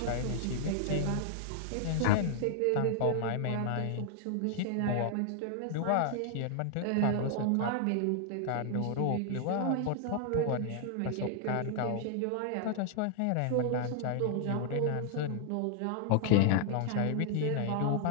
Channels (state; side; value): different; both; correlation 0.00